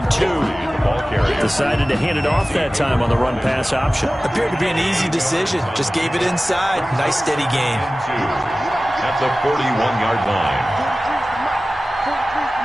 2. Decided to hand it off that time on the run-pass option. Appeared to be an easy decision. Just gave it inside. Nice steady gain. At the 41-yard line.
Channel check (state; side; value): normal; both; correlation 0.97